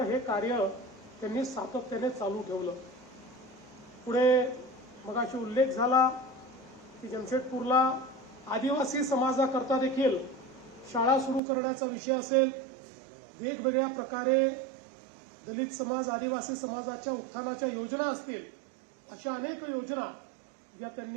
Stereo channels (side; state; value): left; drops out; at 11.4 s